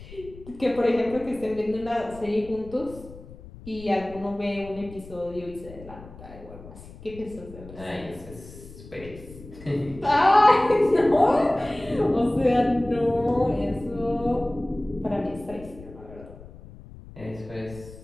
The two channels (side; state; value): left; noise; rumble, 17 dB below the sound